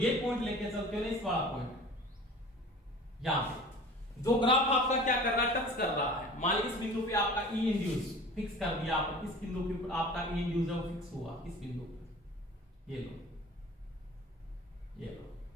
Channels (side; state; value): both; normal; correlation 0.41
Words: पॉइंट लेके चलते हो ना, इस वाला पॉइंट, यहां पे जो ग्राफ आपका क्या कर रहा है, टच कर रहा है। मान लीजिए इस बिंदु पे आपका ई इंड्यूस फिक्स कर दिया आपने, इस बिंदु के ऊपर आपका ई इंड्यूस है वो फिक्स हुआ, इस बिंदु पे, ये लो, ये लो,